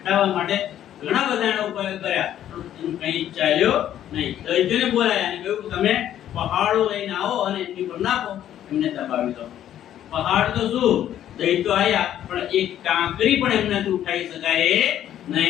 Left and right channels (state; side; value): quieter; right; 11.2 dB